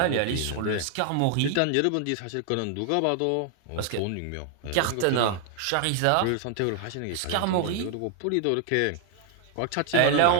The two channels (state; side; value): different; both; correlation 0.00